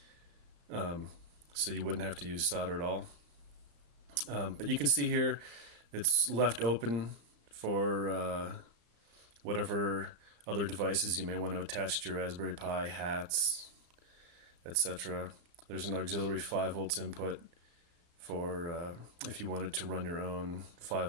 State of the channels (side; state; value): left; late; 34 ms